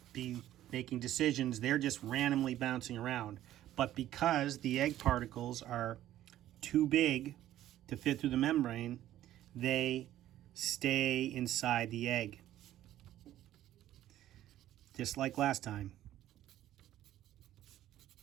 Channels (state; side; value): quieter; left; 13.1 dB